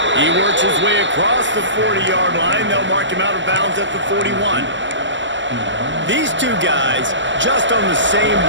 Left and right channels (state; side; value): late; left; 0.54 ms